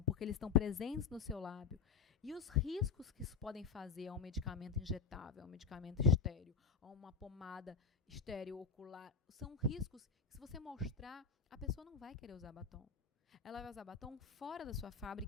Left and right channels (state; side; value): quieter; right; 6.0 dB